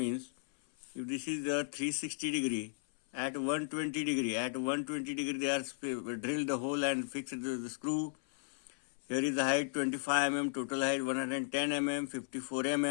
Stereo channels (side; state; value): right; silent; 54 dB below the other